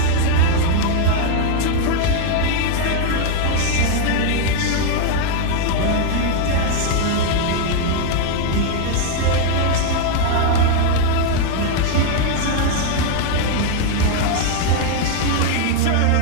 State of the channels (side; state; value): both; different; correlation 0.00